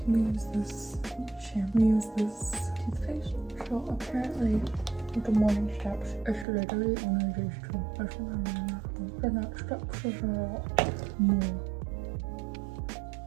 We use this shampoo. We use this toothpaste. So apparently, with the morning steps, it's literally only these two. That's what I remember. The next steps is a lot more.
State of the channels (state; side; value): drops out; left; at 6.5 s